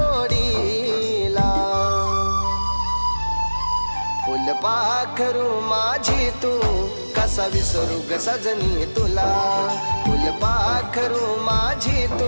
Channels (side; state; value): both; inverted; correlation -1.00